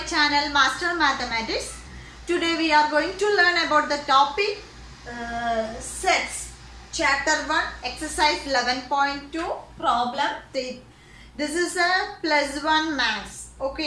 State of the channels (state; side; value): identical; both; correlation 1.00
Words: channel Master Mathematics. Today we are going to learn about the topic sets. Chapter 1, exercise 11.2, problem 3. This is a plus 1 maths.